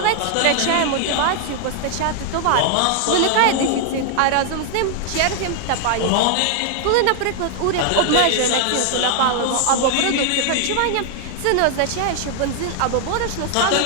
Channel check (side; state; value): both; different; correlation 0.00